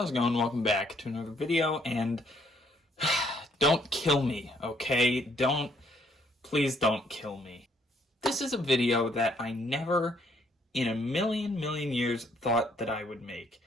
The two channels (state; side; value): normal; both; correlation 0.68